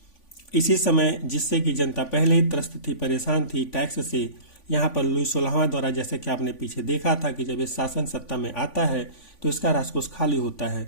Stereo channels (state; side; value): late; right; 3.5 ms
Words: इसी समय जिससे कि जनता पहले ही त्रस्त थी, परेशान थी, टैक्स से यहाँ पर लुई 16वां द्वारा जैसे कि आपने पीछे देखा था कि जब ये शासन सत्ता में आता है तो इसका राजकोष खाली होता है,